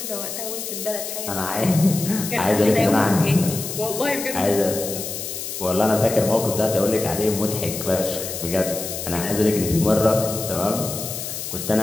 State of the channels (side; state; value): left; noise; hiss, 6 dB below the sound